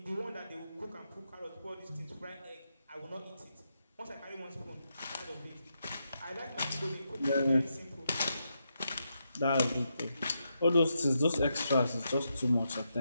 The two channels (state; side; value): inverted; both; correlation -0.84